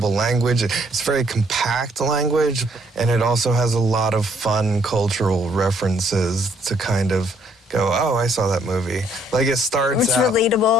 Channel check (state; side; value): normal; both; correlation 0.67